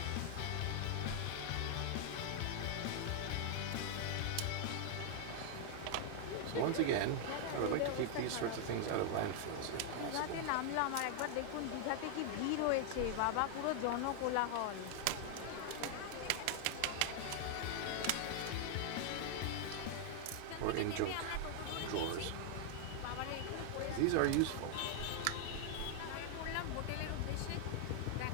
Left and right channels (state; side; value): different; both; correlation 0.00